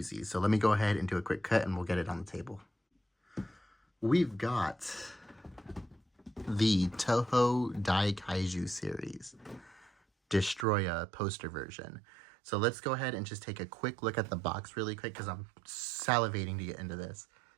So let me go ahead and do a quick cut and we'll get it on the table. We've got the Toho Daikaiju series, Destroyah poster version. So let's go ahead and just take a quick look at the box really quick because I'm salivating to get into this.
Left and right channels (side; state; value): left; drops out; at 10.7 s